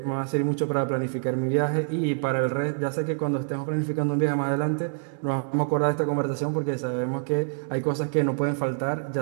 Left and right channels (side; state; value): left; silent; digital silence